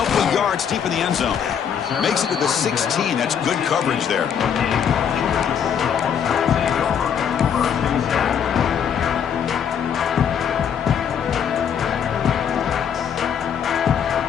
of yards deep in the end zone. Makes it to the 16. That's good coverage there.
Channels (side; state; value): right; quieter; 8.0 dB